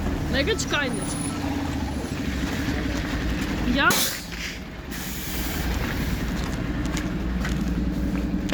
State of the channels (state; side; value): identical; both; correlation 1.00